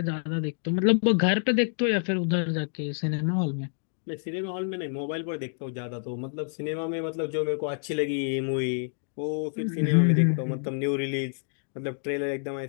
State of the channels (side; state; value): right; silent; digital silence